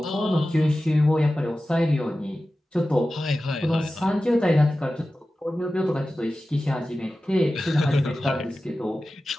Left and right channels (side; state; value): both; normal; correlation 0.95